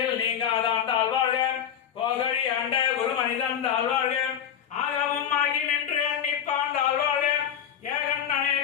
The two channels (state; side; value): quieter; right; 9.1 dB